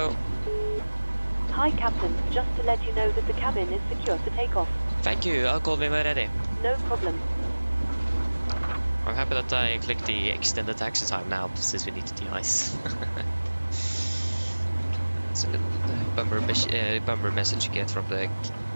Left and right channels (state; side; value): inverted; both; correlation -1.00